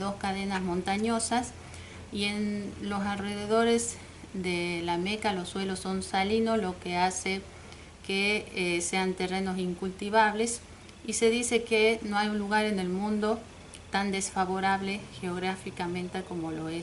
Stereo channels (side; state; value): both; identical; correlation 1.00